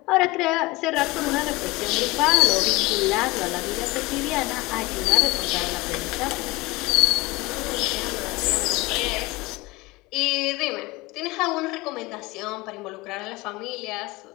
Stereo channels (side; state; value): right; quieter; 22.0 dB